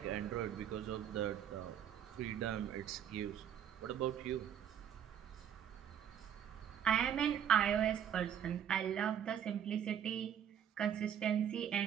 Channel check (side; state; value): left; quieter; 9.0 dB